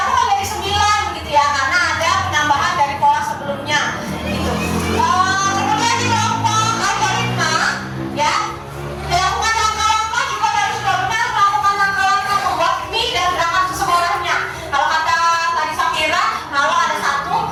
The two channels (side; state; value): both; identical; correlation 1.00